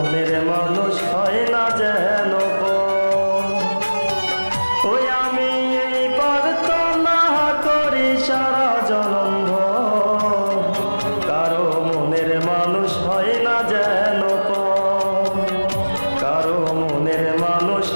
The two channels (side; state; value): both; inverted; correlation -1.00